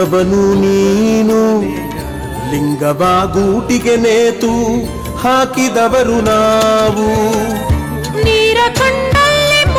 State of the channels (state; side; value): identical; both; correlation 1.00